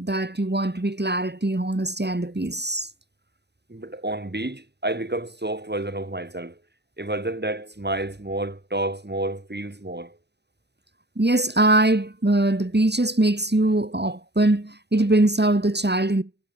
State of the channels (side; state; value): left; late; 0.49 ms